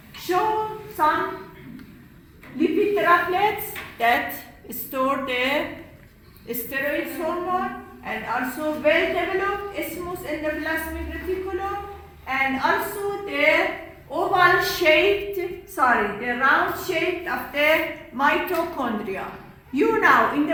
show some lipid droplets that store the steroid hormone, and also well-developed smooth endoplasmic reticulum, and also the oval round shaped of the mitochondria. You know, in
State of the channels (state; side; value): identical; both; correlation 1.00